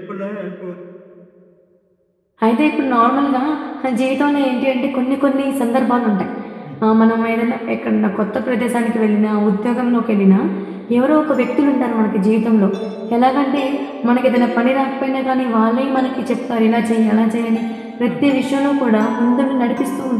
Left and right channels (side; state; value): both; identical; correlation 1.00